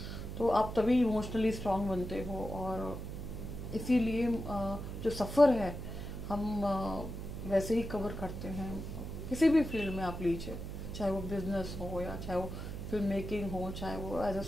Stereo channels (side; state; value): right; noise; hum, 7 dB below the sound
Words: तो आप तभी इमोशनली स्ट्रांग बनते हो। और इसीलिए जो सफ़र है हम वैसे ही कवर करते हैं। किसी भी फील्ड में आप लीजिए, चाहे वो बिजनेस हो, या चाहे वो फिल्म मेकिंग हो, चाहे वो एज अ